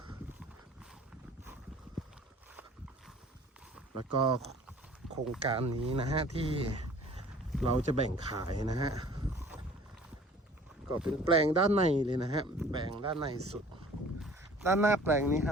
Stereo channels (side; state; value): both; normal; correlation 0.49